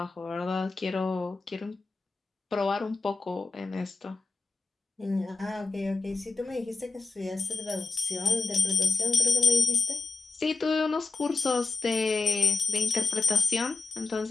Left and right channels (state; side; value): quieter; right; 4.0 dB